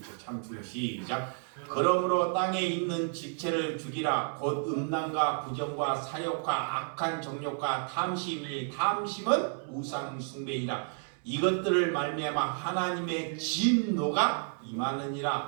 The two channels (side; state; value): left; silent; 57 dB below the other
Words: 참 중요. 시작. 그러므로 땅에 있는 집체를 죽이라. 곧 음란과 부정과 사욕과 악한 정욕과 탐심이, 탐심은 우상 숭배이라. 이것들을 말미암아 하나님의 진노가